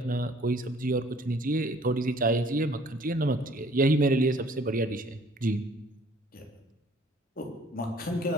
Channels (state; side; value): normal; both; correlation 0.56